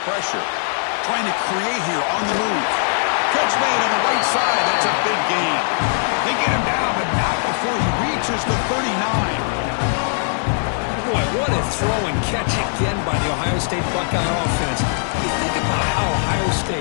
pressure. Trying to create here on the move. Catch made on the right side. That's a big gain. They get him down, but not before he reaches the 39. Boy, what a throw and catch again by the Ohio State Buckeye offense. You think about how Ohio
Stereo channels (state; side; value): silent; right; 58 dB below the other